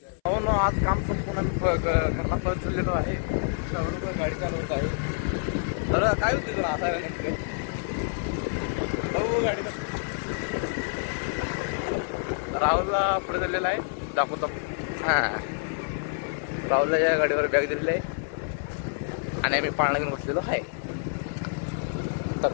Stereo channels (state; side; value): silent; right; 60 dB below the other